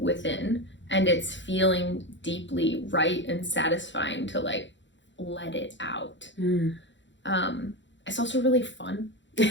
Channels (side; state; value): right; late; 0.54 ms